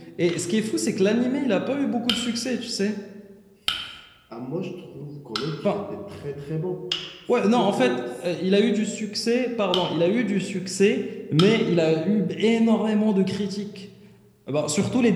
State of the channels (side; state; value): both; identical; correlation 1.00